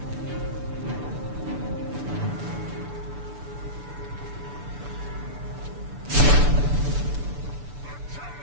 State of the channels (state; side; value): late; left; 6.9 ms